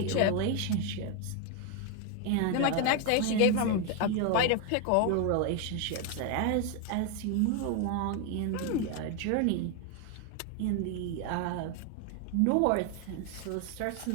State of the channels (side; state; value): both; different; correlation 0.01